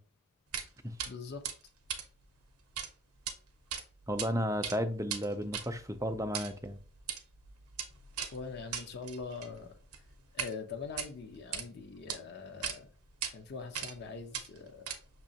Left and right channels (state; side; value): normal; both; correlation 0.42